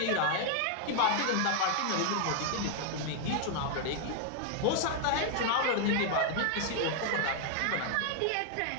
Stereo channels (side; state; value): both; different; correlation 0.00